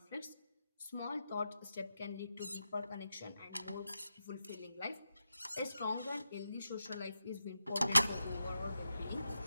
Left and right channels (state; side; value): inverted; both; correlation -0.89